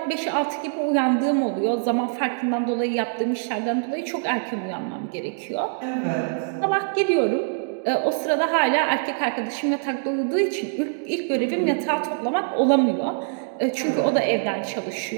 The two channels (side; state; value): left; silent; digital silence